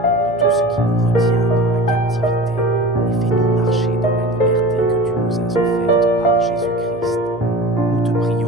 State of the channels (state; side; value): normal; both; correlation 0.36